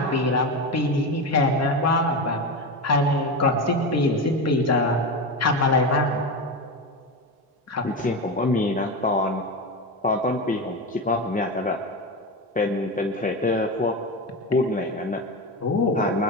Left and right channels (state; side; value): normal; both; correlation 0.19